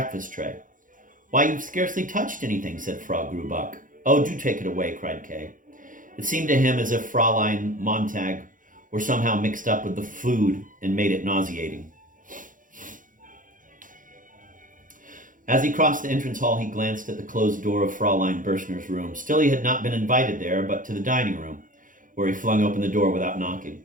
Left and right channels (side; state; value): left; late; 0.39 ms